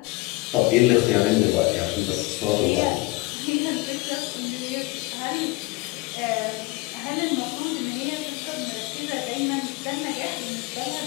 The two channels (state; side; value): quieter; right; 22.8 dB